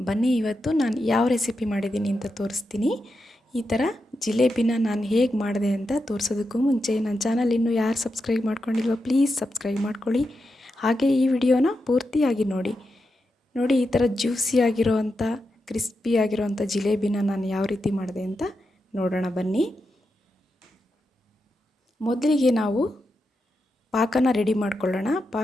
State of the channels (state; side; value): normal; both; correlation 0.87